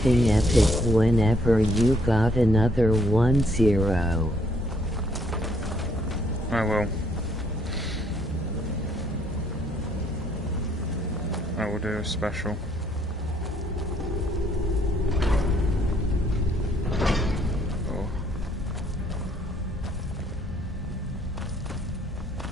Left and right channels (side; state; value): both; normal; correlation 0.68